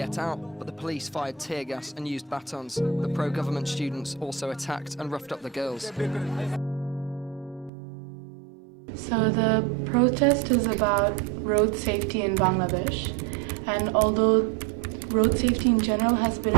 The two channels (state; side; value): drops out; left; at 7.7 s